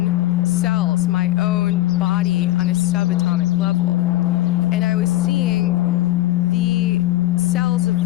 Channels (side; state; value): right; quieter; 16.0 dB